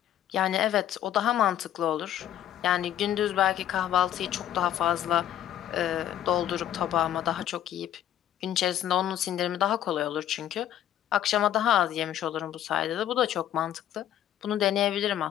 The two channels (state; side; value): quieter; right; 11.2 dB